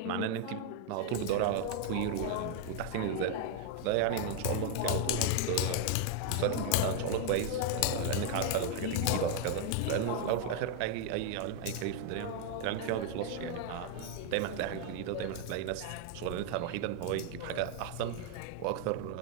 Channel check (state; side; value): different; both; correlation 0.00